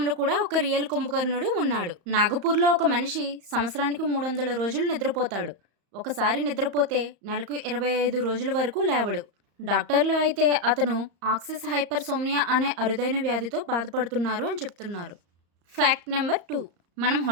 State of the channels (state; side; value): late; left; 34 ms